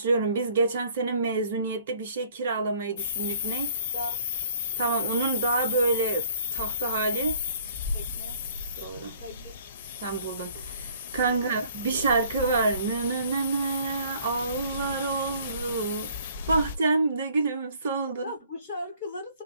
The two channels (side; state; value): both; inverted; correlation -0.57